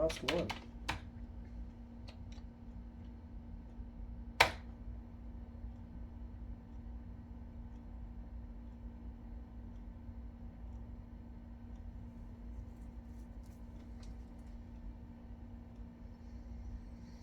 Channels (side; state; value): both; identical; correlation 1.00